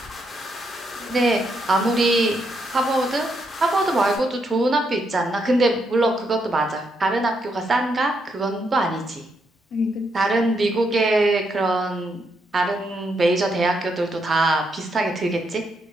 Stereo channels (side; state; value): both; normal; correlation 0.78